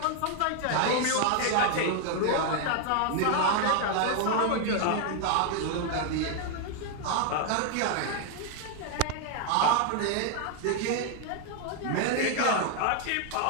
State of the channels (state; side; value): different; both; correlation 0.01